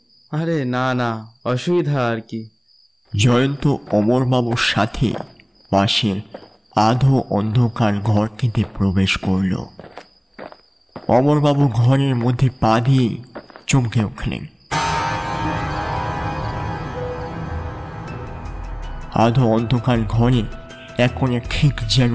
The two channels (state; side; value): identical; both; correlation 1.00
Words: আরে না না, অসুবিধা আর কি। জয়ন্ত অমরবাবুর সাথে পাশের আধো অন্ধকার ঘরটিতে প্রবেশ করল। অমরবাবু ঘরের মধ্যে পা দিয়ে চমকে উঠলেন। আধো অন্ধকার ঘরে এখন ঠিক যেন